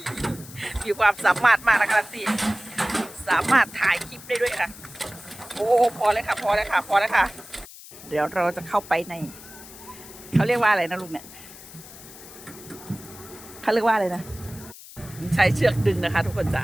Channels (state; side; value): noise; left; hiss, 17 dB below the sound